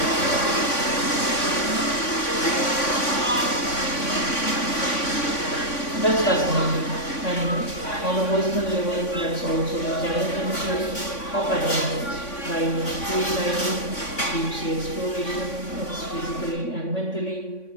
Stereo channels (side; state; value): right; late; 3.5 ms